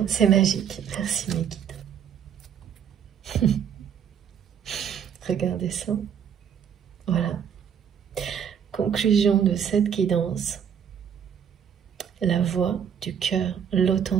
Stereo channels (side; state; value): left; quieter; 8.2 dB